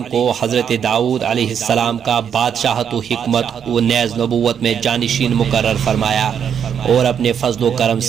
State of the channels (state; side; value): quieter; left; 8.0 dB